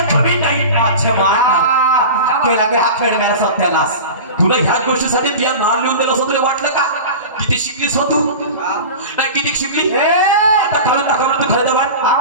जमीन नाही केला गे हा खेळ मेरा सत्यानाश तुला ह्याच गोष्टीसाठी तुझ्या नाव लिहून दिलं असं तुला वाटलं का किती शिकलीस हो तू नाही किती शिकली आता खरं दाखव तू खरं वाट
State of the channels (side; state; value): both; inverted; correlation -0.32